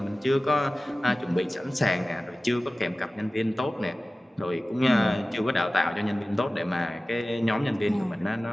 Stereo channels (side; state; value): both; normal; correlation 0.96